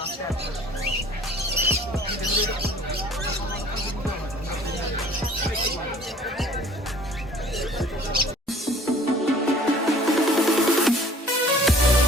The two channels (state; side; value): normal; both; correlation 0.51